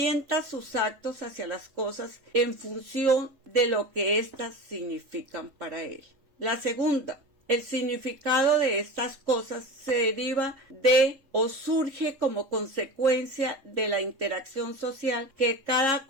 sus actos hacia las cosas en función de lo que éstas significan para él. La segunda: el significado de estas cosas se deriva de o surge como consecuencia de la interacción social que cada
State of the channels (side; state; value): left; late; 3.7 ms